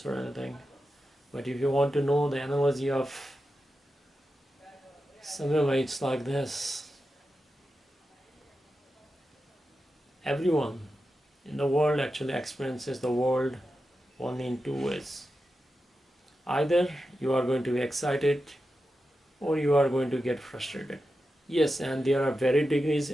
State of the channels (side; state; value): both; normal; correlation 0.90